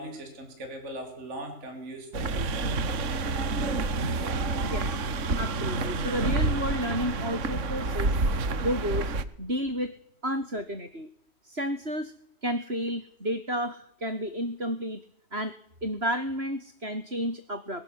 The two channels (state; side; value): late; left; 3.5 ms